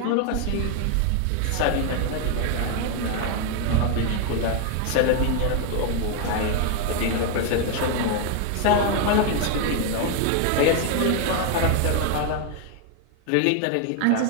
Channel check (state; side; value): different; both; correlation 0.01